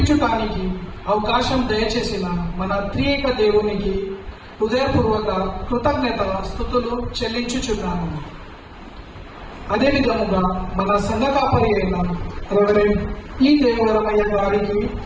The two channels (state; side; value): identical; both; correlation 1.00